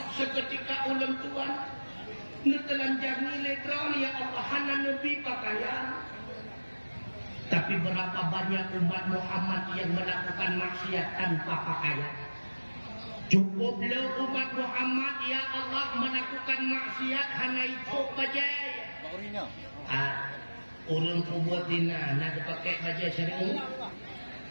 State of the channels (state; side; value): inverted; both; correlation -1.00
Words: seketika ulun Tuhan netelanjang nilai derawan ya Allah hana nabi pakaian. Tapi berapa banyak umat Muhammad yang melakukan maksiat tanpa pakaian. Cukuplah umat Muhammad ya Allah melakukan maksiat hana itu bajai. Urun kubuat dina nak pakai bajai syar'i.